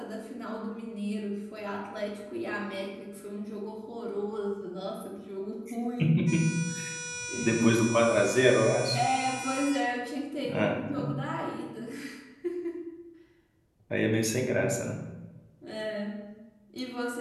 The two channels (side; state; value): both; identical; correlation 1.00